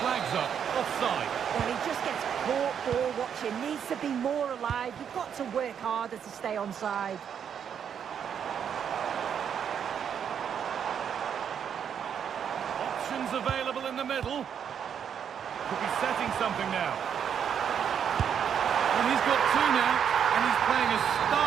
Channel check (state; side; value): quieter; left; 8.1 dB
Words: up. Offside. Well, he just gets caught ball watching. Needs to be more alive. You've got to work harder to stay onside. Options available in the middle. Could be setting something now. And he's got two now, and he's playing a